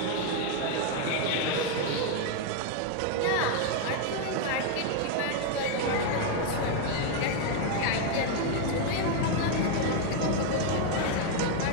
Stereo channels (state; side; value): different; both; correlation 0.01